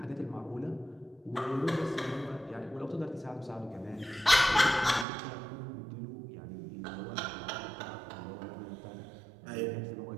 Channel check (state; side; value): drops out; left; at 5.1 s